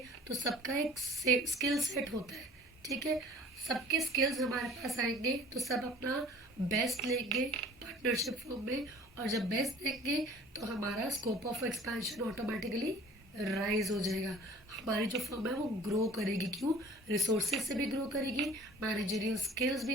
तो सबका एक स्किल सेट होता है, ठीक है, सबके स्किल्स हमारे पास आएंगे तो सब अपना बेस्ट लेंगे पार्टनरशिप फॉर्म में, और जब बेस्ट देंगे तो हमारा scope of expansion automatically rise हो जाएगा। हमारी जो फर्म है वो ग्रो करेगी, क्यों, रिसोर्सेज से भी ग्रो करेगी, मैनेजरियल स्किल्स भी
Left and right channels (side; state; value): both; normal; correlation 0.47